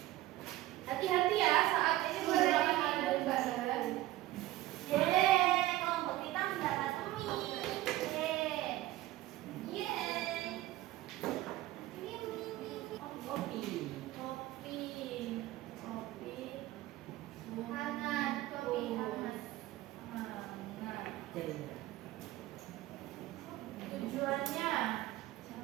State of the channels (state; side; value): quieter; left; 16.2 dB